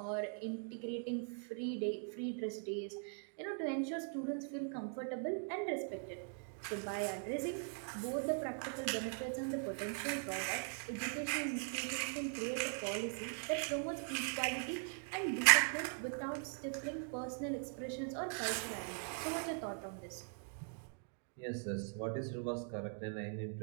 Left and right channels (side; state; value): left; silent; 50 dB below the other